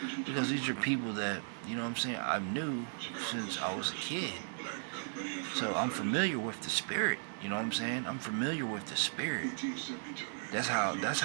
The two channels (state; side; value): silent; left; digital silence